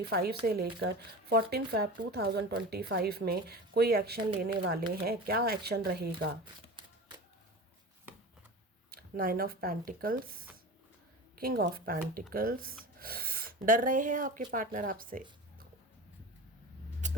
से लेकर 14 फैब 2025 में कोई एक्शन लेने वाले हैं? क्या एक्शन रहेगा? 9 of pentacles, king of pentacles. डर रहे हैं आपके पार्टनर आपसे।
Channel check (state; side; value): normal; both; correlation 0.32